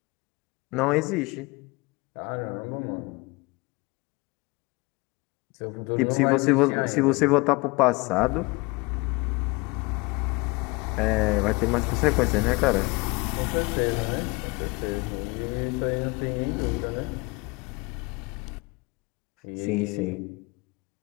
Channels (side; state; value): right; quieter; 25.6 dB